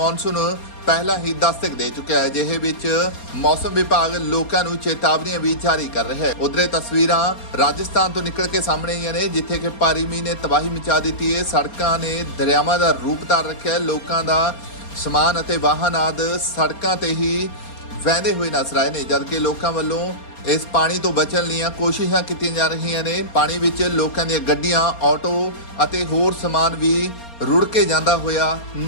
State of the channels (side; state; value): right; late; 4.3 ms